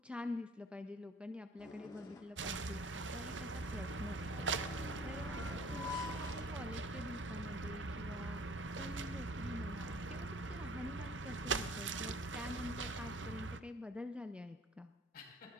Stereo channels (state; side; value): normal; both; correlation 0.51